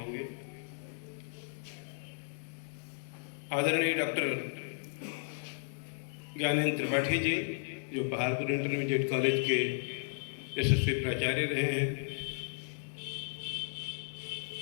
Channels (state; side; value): silent; right; digital silence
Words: आदरणीय डॉक्टर ज्ञानेंद्र त्रिपाठी जी, जो पहाड़पुर इंटरमीडिएट कॉलेज के यशस्वी प्राचार्य रहे हैं,